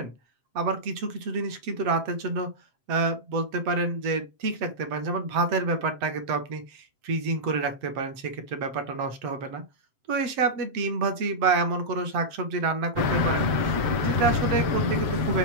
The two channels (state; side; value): late; left; 7.7 ms